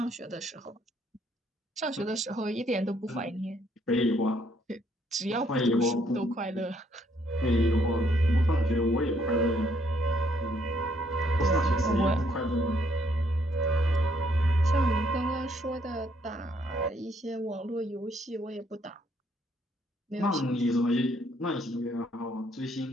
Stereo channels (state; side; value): normal; both; correlation 0.69